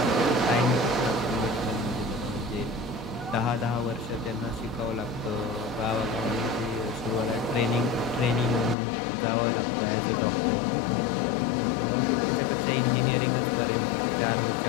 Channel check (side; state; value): right; drops out; at 8.8 s